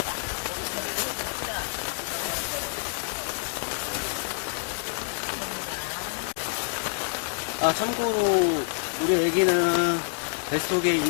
아, 참고로, 우리 애기는 뱃속에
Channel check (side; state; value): right; silent; 60 dB below the other